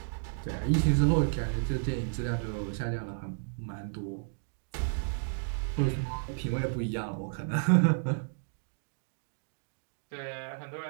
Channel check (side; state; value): left; silent; digital silence